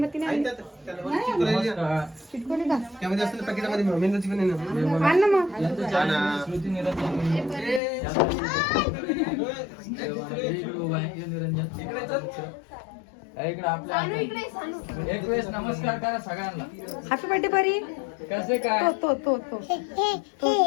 आणली चिटकवली का आण ना मग. एक वेळेस नमस्कार करा सगळ्यांना. हॅपी बर्थडे परी. कसे काय तो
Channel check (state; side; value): drops out; right; at 7.8 s